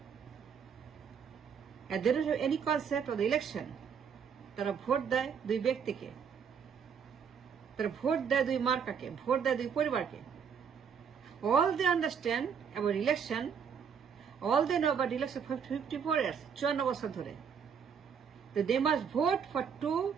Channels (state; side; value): quieter; left; 6.9 dB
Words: And they don't have any concept of the election. তারা vote দেয় দুই ব্যক্তিকে, তারা ভোট দেয় দুই মার্কাকে, ভোট দেয় দুই পরিবারকে। All they understand about election, all they know about election for 54 years, 54 বছর ধরে, that they must vote for two